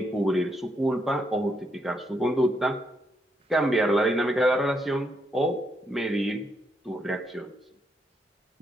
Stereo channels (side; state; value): both; normal; correlation 0.78